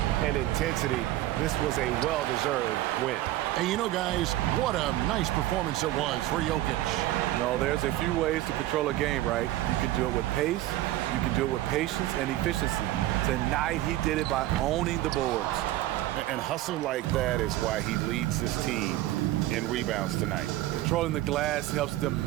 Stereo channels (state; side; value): quieter; left; 15.4 dB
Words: and intensity. This was a well-deserved win. And you know, guys, what a nice performance it was for Jokic. No, there's a few ways to control a game, right? You can do it with pace, you can do it with patience and efficiency. Tonight, he did it by owning the boards. And hustle like that is why he leads this team in rebounds tonight. Controlling the glass helps them